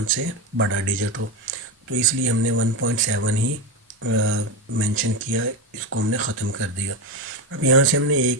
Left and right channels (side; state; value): both; normal; correlation 0.14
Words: से बड़ा डिजिट हो। तो इसलिए हमने 1.7 ही मेंशन किया, इसको हमने ख़त्म कर दिया। अब यहाँ से हमने